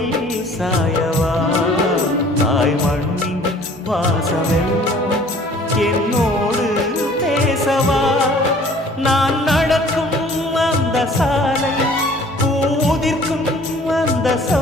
சாயவா தாய்மண்ணின் பாசமெல்லாம் என்னோடு பேசவா நான் நடக்கும் அந்த சாலை பூதிர்க்கும் அந்த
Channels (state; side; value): normal; both; correlation 0.52